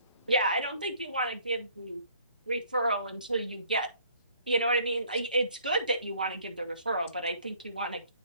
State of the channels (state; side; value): inverted; both; correlation -0.59